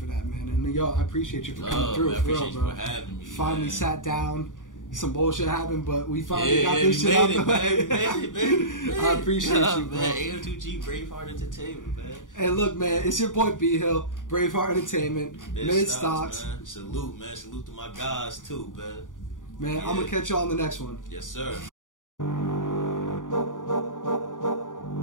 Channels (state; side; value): late; right; 0.88 ms